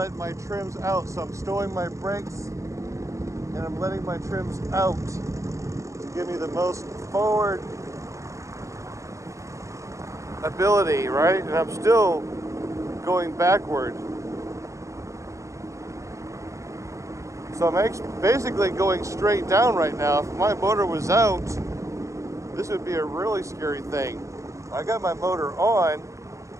my trims out. So I'm stowing my brakes and I'm letting my trims out to give me the most forward ability, right? And I'm still going backward. So I'm basically going straight down right now. If my motor was out, this would be a really scary thing. I got my motor on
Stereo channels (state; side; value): late; left; 0.15 ms